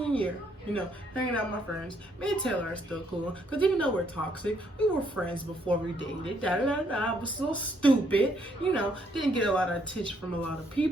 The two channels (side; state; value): both; normal; correlation 0.70